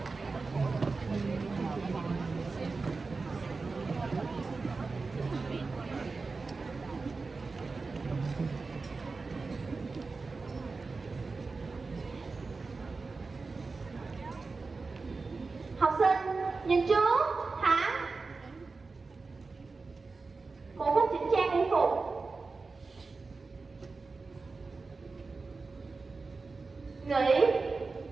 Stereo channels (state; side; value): quieter; left; 4.1 dB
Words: Học sinh nhìn chú thẳng, một phút chỉnh trang y phục, nghỉ,